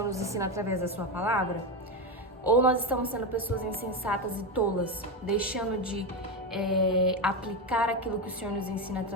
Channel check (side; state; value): both; normal; correlation 0.12